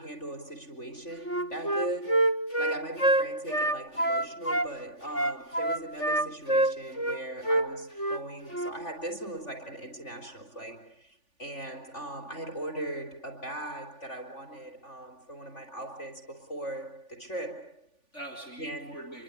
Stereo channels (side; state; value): right; late; 3.5 ms